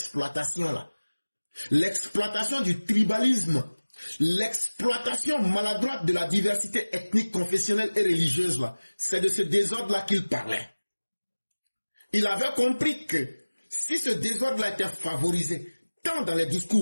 là. L'exploitation du tribalisme, l'exploitation maladroite de la diversité ethnique, confessionnelle et religieuse là. C'est de ce désordre là qu'il parlait. Il avait compris que si ce désordre là était favorisé, tant dans les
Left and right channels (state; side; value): inverted; both; correlation -1.00